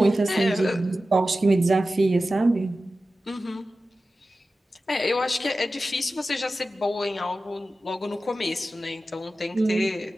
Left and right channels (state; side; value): normal; both; correlation 0.94